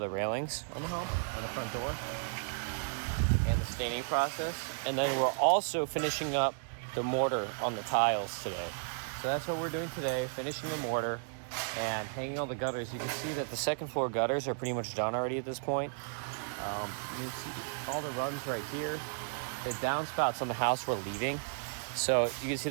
railings on the home, on the front door, and the staining process. And then we're also finishing up the mortar on the tiles today. So that's what we're doing today, finishing the mortar and hanging all the gutters. You can see that the second floor gutters are pretty much done already at this point. You can see all the runs right here. The downspouts on the house we're leaving. So you can see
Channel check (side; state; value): left; silent; digital silence